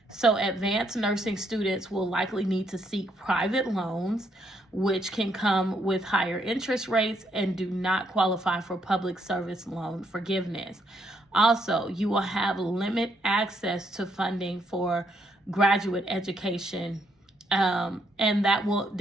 So advanced nursing students will likely need to seek private loans, which can come with higher interest rates and do not qualify for public service loan forgiveness. Also, you will have limited access to funding for graduate education, and that will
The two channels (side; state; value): both; normal; correlation 0.73